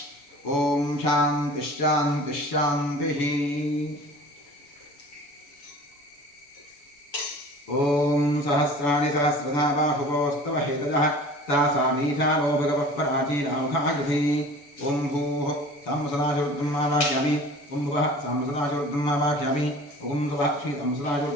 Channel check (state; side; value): late; right; 7.0 ms